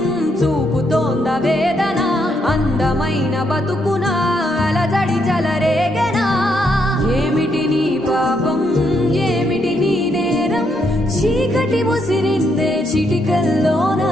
చూపుతోంద వేదన, అందమైన బతుకున అలజడి చలరేగెనా. ఏమిటి నీ పాపం, ఏమిటి నీ నేరం, చీకటి ముసిరిందే చిటికల్లోనా,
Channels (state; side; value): normal; both; correlation 0.76